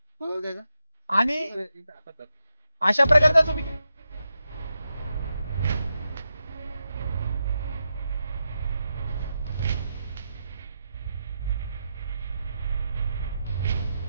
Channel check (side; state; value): both; inverted; correlation -0.87